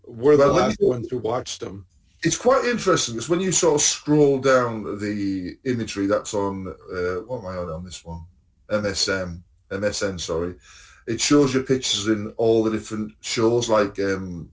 the last ones who watched them. It's quite interesting because when you sort of scroll down the imagery that's on, what am I on this one? MSN, sorry. It shows you pictures in all the different shows, like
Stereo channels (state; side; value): identical; both; correlation 1.00